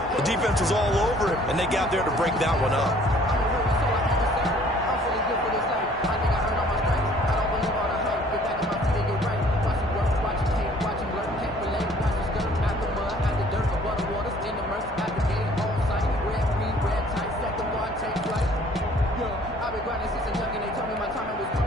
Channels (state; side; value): normal; both; correlation 0.56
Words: the defense was all over him, and they got there to break that one up.